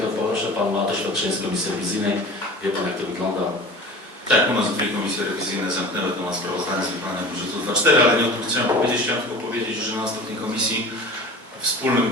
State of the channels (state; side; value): normal; both; correlation 0.38